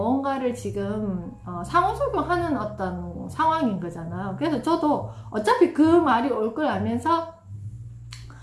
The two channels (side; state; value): both; identical; correlation 1.00